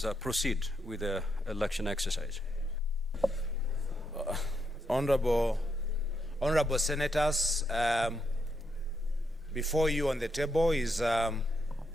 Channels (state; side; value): normal; both; correlation 0.80